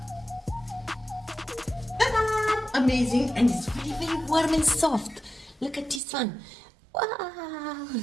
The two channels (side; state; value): left; drops out; at 6.0 s